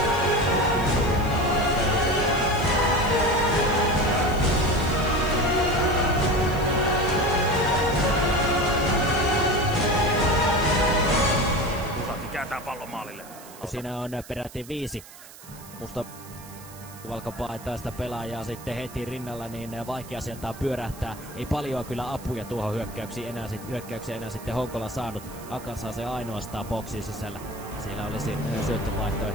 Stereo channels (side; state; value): right; noise; hiss, 19 dB below the sound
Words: Kääntää pallon maalille. Siinä on peräti 5 musta valkopaitaista sitä pelaajaa sitten heti rinnalla, niin vaikea sieltä pyörähtää. Ei paljon kyllä apuja tuohon hyökkäykseen enää sitten Honkola saanut. Akan saa se ainoastaan boksin sisällä. Siellä olisi